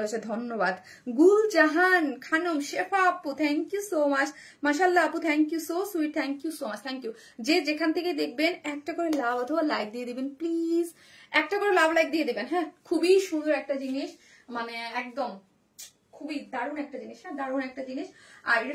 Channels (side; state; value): both; identical; correlation 1.00